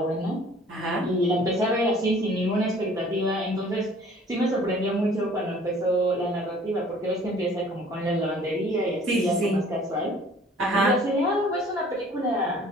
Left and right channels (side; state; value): both; normal; correlation 0.52